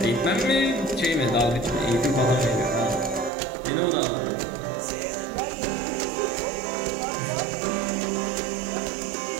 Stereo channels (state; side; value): drops out; left; at 3.3 s